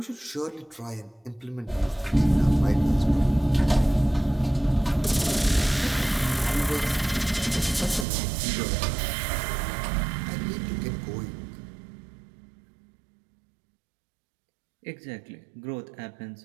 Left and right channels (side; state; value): left; drops out; at 8.1 s